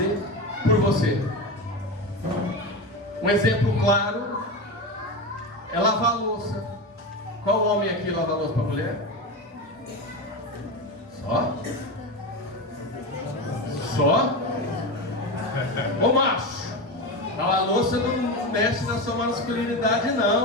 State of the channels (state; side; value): normal; both; correlation 0.21